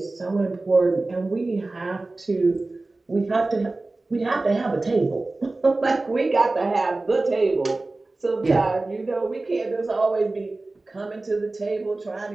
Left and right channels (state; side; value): quieter; left; 3.2 dB